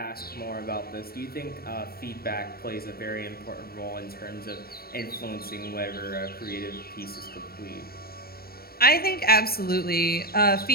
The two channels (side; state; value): right; late; 0.44 ms